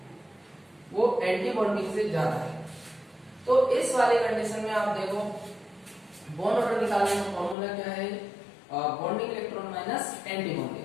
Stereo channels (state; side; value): drops out; right; at 7.6 s